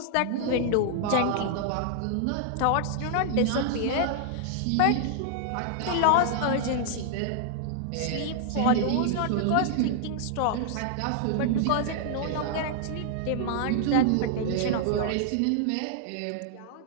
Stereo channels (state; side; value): different; both; correlation -0.01